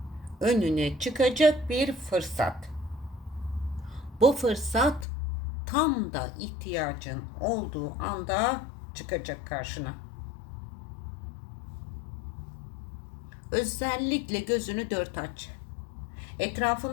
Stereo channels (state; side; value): drops out; right; at 5.1 s